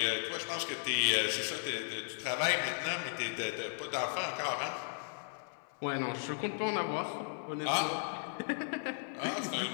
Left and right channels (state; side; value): silent; right; 54 dB below the other